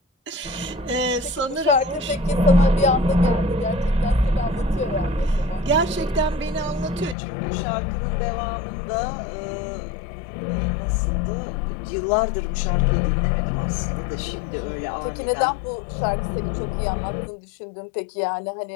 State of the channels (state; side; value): drops out; right; at 7.2 s